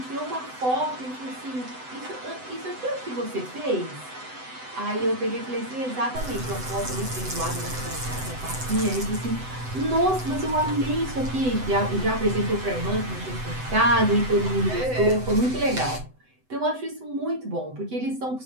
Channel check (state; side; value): late; left; 7.9 ms